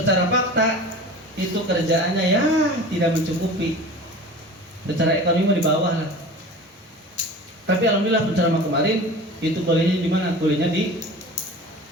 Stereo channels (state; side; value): normal; both; correlation 0.37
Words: fakta itu kerjaannya ya tidak mencukupi, secara ekonomi di bawah lah. Tapi alhamdulillah penceramah kemarin itu kuliahnya di mana? Kuliahnya di